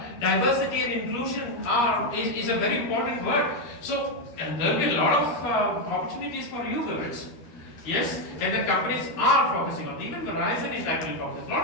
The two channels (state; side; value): late; right; 12 ms